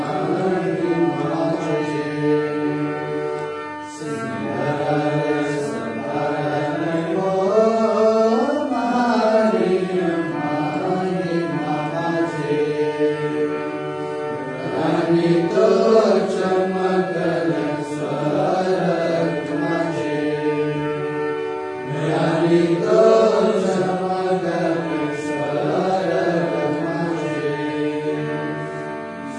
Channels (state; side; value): identical; both; correlation 1.00